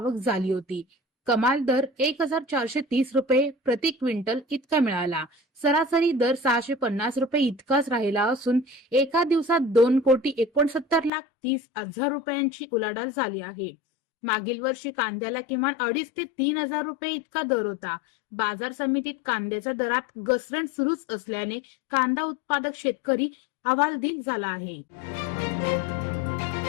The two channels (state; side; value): drops out; right; at 11.1 s